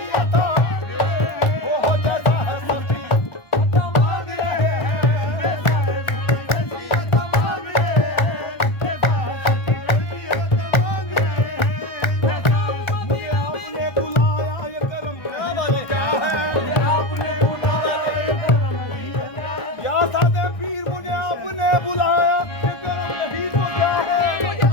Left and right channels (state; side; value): late; right; 1.3 ms